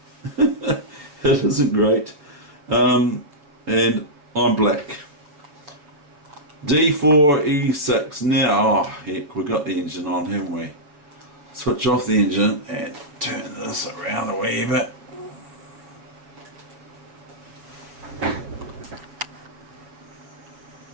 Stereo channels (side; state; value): left; late; 7.0 ms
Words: It isn't great. And I'm black. D4, E6. Now, oh heck, we've got the engine on, haven't we? Switch off the engine and turn this around a wee bit.